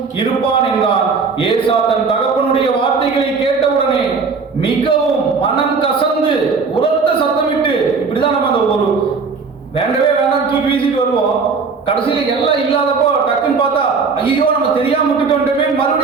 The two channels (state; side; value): quieter; left; 4.9 dB